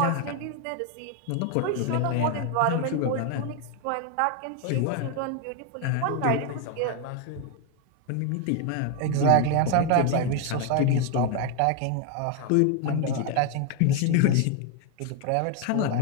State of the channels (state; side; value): different; both; correlation 0.01